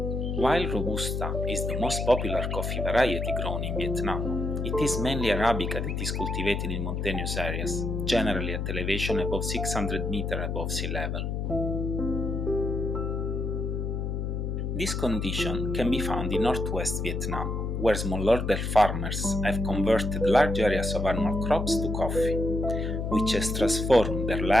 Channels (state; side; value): noise; left; hum, 2 dB below the sound